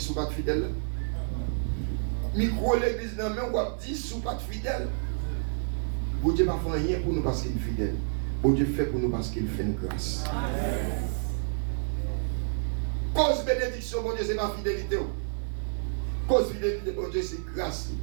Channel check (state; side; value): silent; left; digital silence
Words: pas de fidèle. Micro l'église, dans la main, on va dire, sous pas de fidèle. Bon Dieu ne fait rien pour nous parce qu'il est fidèle. Bon Dieu fait pour nous parce qu'il fait une grâce. Amen. Cause bénédiction, bon Dieu, c'est ma fidélité. Cause fidélité, bon Dieu, c'est grâce.